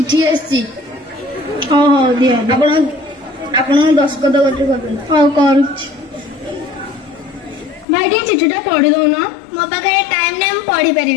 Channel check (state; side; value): drops out; right; at 7.9 s